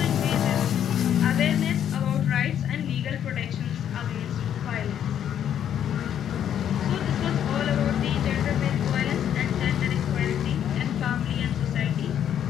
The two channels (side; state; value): right; quieter; 9.7 dB